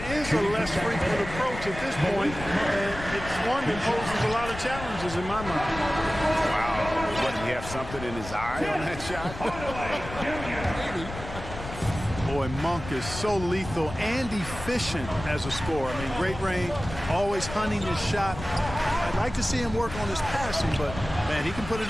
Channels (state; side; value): noise; left; rumble, 11 dB below the sound